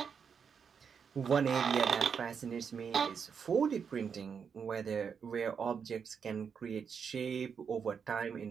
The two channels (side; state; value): left; quieter; 6.7 dB